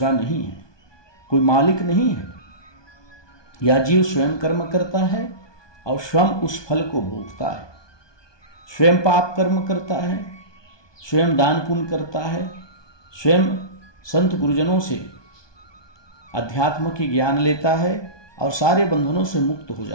नहीं है, कोई मालिक नहीं है। यह जीव स्वयं कर्म करता है और स्वयं उस फल को भोगता है। स्वयं पाप कर्म करता है, स्वयं दान पुण्य करता है, स्वयं संत गुरुजनों से अध्यात्म की ज्ञान लेता है और सारे बंधनों से मुक्त हो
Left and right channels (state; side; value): late; right; 1.2 ms